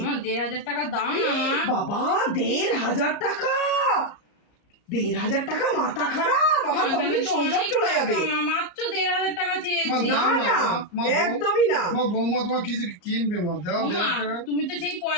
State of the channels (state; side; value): late; right; 34 ms